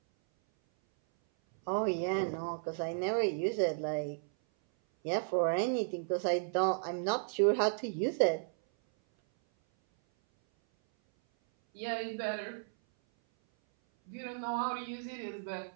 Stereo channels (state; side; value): silent; left; 55 dB below the other